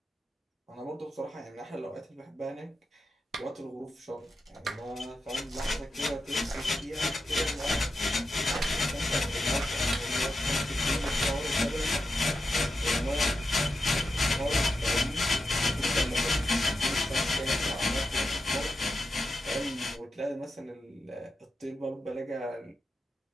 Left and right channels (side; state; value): both; normal; correlation 0.89